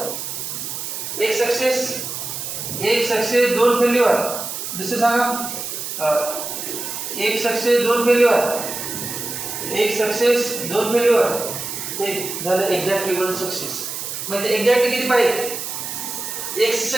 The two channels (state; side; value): noise; right; hiss, 6 dB below the sound